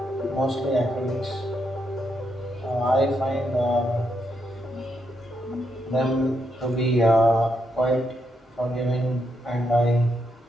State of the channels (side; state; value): both; normal; correlation 0.81